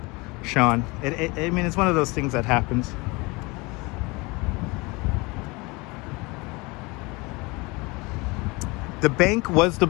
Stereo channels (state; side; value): quieter; right; 25.6 dB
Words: Sean. I mean, it's one of those things that happens. The bank was the